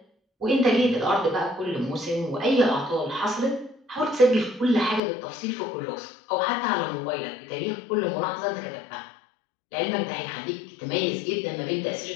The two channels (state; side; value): drops out; right; at 5.0 s